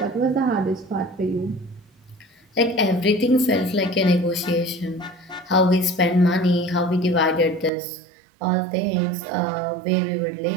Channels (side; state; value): left; drops out; at 7.7 s